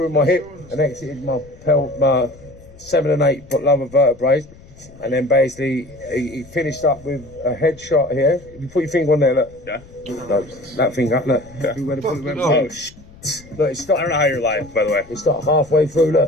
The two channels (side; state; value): left; noise; rumble, 23 dB below the sound